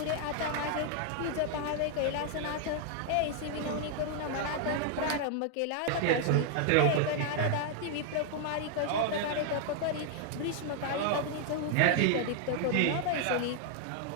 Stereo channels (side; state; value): both; different; correlation 0.00